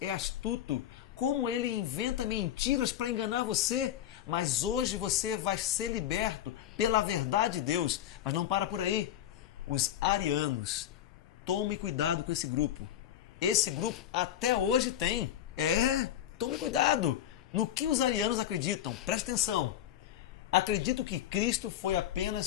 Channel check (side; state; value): right; quieter; 11.5 dB